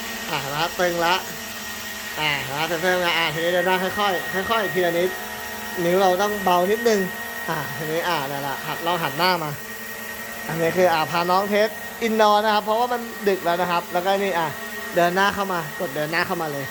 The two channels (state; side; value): identical; both; correlation 1.00